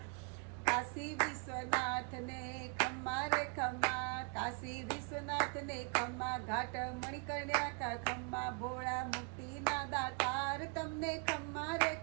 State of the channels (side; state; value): left; quieter; 35.5 dB